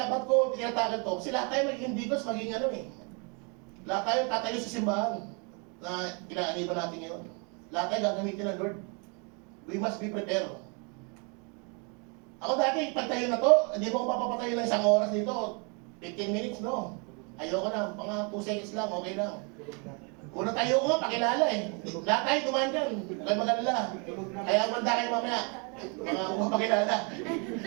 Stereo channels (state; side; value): quieter; left; 34.6 dB